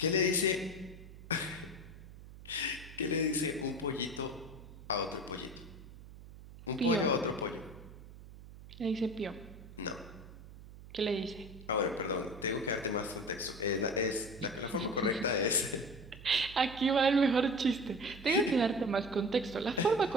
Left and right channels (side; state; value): right; noise; hum, 17 dB below the sound